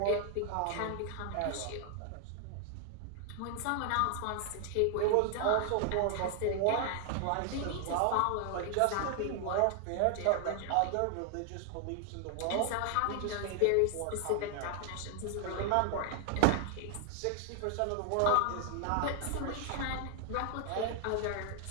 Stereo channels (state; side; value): different; both; correlation 0.00